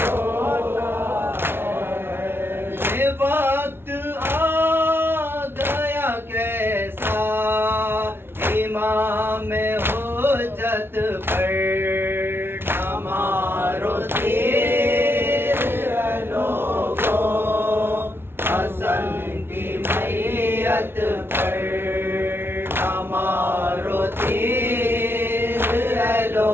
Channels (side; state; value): left; late; 0.11 ms